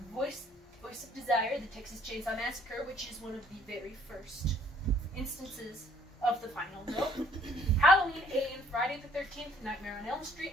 Voice of Desire, the Texas Chainsaw Massacre, which is one of the very first instances of the final girl, Halloween, Alien, Friday the 13th, Nightmare on Elm Street,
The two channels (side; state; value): both; normal; correlation 0.61